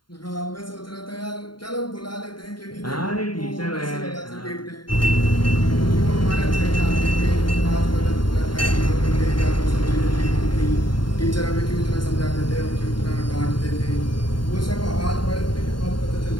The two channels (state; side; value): late; right; 0.72 ms